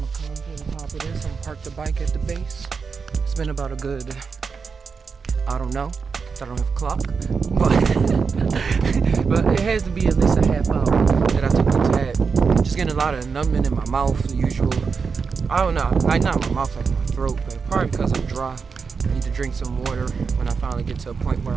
come to the top of this. I'm gonna park the bike at the base. It's been about a good, I don't know, I don't have a clock, but it has to be at least a half hour that I took the tab. Just getting a lot of numbing in my mouth, the usual. I don't know, like not my mouth, like my throat, but probably because I'm dry. I need to drink some water when I finally get to a point where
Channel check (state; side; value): quieter; left; 5.4 dB